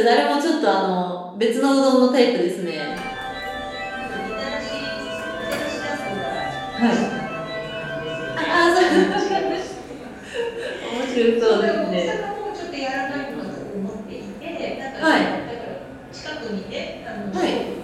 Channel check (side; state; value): both; identical; correlation 1.00